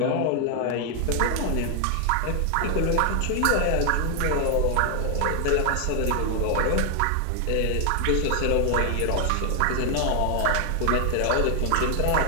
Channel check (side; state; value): both; different; correlation 0.00